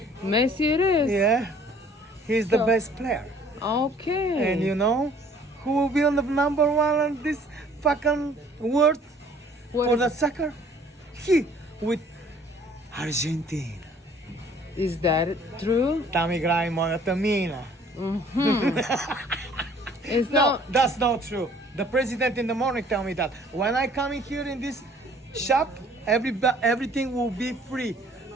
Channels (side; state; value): both; normal; correlation 0.56